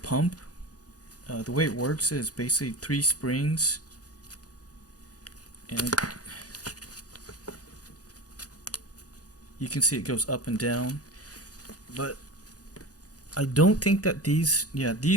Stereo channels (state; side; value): late; right; 0.67 ms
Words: the way it works is basically 3 springs, and you can see it goes up and down. But I don't think that these